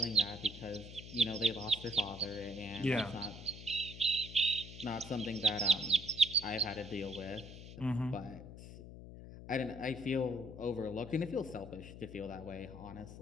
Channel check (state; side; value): noise; left; hum, 13 dB below the sound